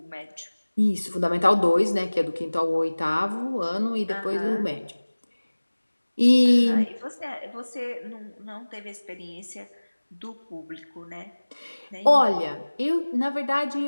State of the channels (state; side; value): inverted; both; correlation -1.00